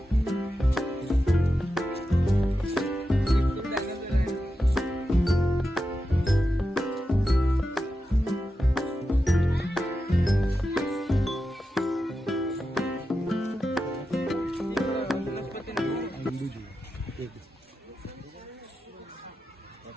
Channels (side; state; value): both; normal; correlation 0.90